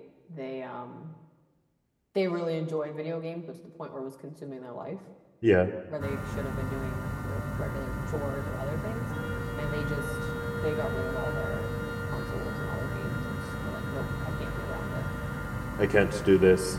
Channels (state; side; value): identical; both; correlation 1.00